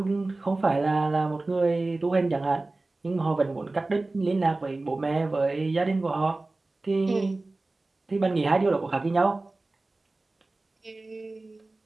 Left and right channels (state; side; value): quieter; left; 3.1 dB